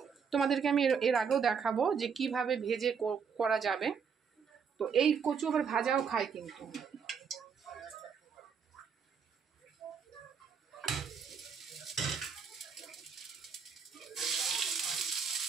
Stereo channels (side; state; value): left; quieter; 6.4 dB